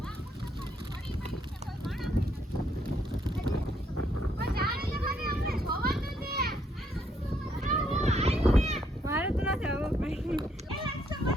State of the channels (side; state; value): both; normal; correlation 0.72